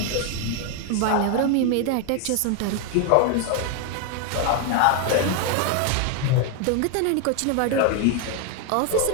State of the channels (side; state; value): both; different; correlation 0.01